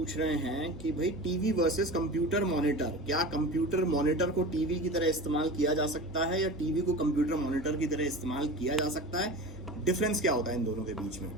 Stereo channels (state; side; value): normal; both; correlation 0.32